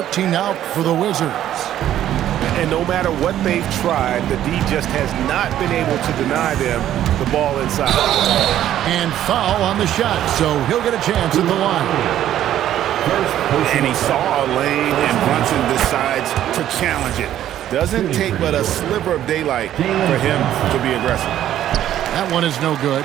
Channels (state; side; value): quieter; left; 11.8 dB